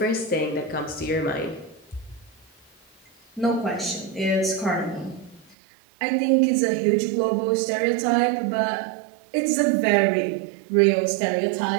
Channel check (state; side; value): drops out; left; at 5.6 s